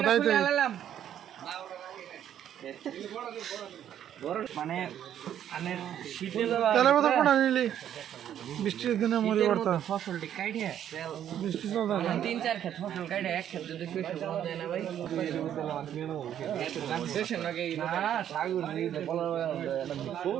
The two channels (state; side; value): quieter; left; 10.3 dB